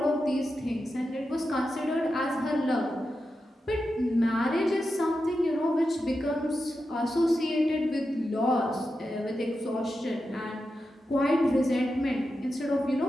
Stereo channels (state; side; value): normal; both; correlation 0.89